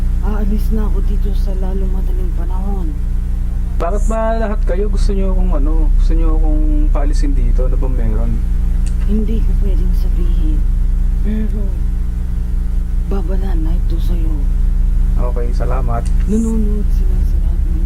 aalis na ako dito sa lalo madaling panahon. Bakit ba lahat kayo gusto nyo akong paalisin dito? Ano ba meron? Hindi ko pwedeng sabihin. Pero, babala na ito sa'yo. Okay, salamat. Nanonood sila sa lahat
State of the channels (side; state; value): both; identical; correlation 1.00